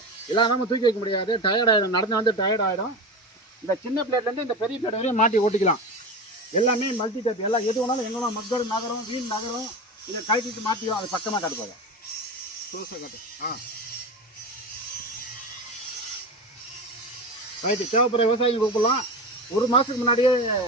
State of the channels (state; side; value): normal; both; correlation 0.25